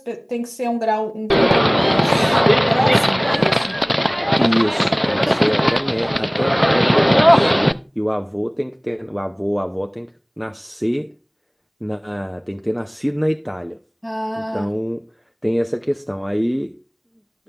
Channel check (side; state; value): both; identical; correlation 1.00